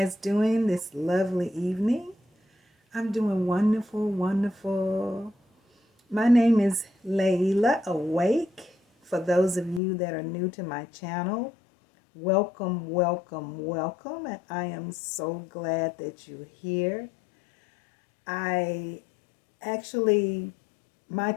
doing this lovely evening? I'm doing wonderful, wonderful. My name is Layla Awake. For those of you that are new to my channel, welcome, welcome, welcome. And I am so glad that you're here. I actually, my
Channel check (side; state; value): right; drops out; at 9.8 s